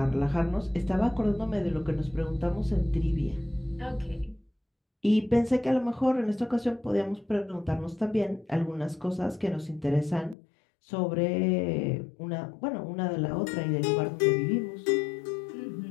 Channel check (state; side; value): drops out; right; at 10.4 s